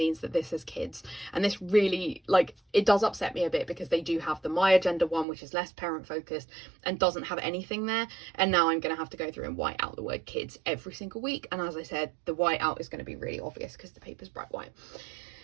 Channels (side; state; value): left; drops out; at 5.2 s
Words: that this is kids, and this really, like, it does upset me a bit, because they do have the MomAgenda one, which is less parent focused and doesn't have anything there, and now I'm going to have to go through and white out the word kids every single week, and as I said, the white out is going to be really obvious because the paper's bright white.